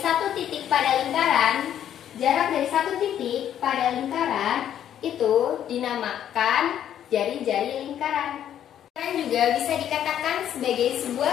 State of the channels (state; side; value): quieter; right; 10.3 dB